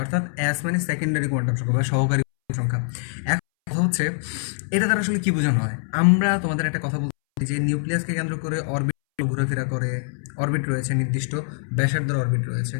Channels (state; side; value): silent; right; 63 dB below the other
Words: অর্থাৎ এস মানে সেকেন্ডারি কোয়ান্টাম সংখ্যা বা সহকারী সংখ্যা। এখন কথা হচ্ছে এটা দ্বারা আসলে কি বোঝানো হয়। আমরা তোমাদের একটা কথা বলছি যে নিউক্লিয়াসকে কেন্দ্র করে অরবিট ঘোরাফেরা করে, অরবিট রয়েছে, নির্দিষ্ট ব্যাসার্ধের অরবিট রয়েছে।